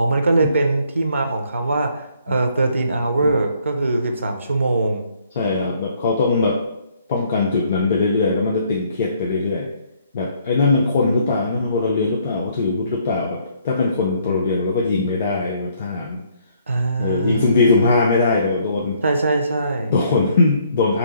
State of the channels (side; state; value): both; inverted; correlation -0.66